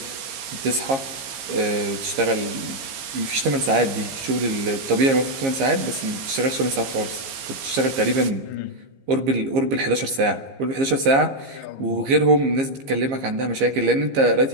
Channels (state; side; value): late; left; 15 ms